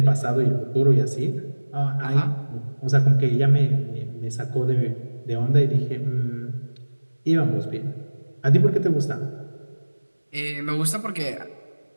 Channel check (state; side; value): inverted; both; correlation -1.00